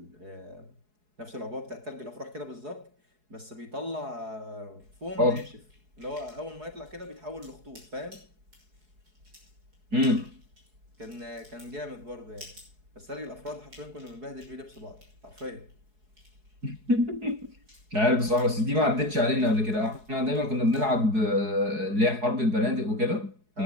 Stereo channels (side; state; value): left; late; 4.7 ms